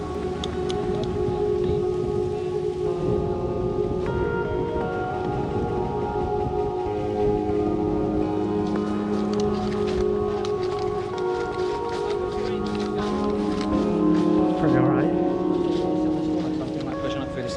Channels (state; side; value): identical; both; correlation 1.00